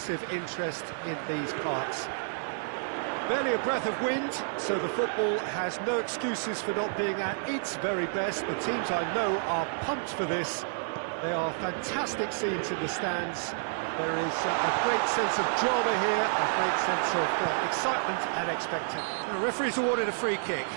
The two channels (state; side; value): silent; left; 58 dB below the other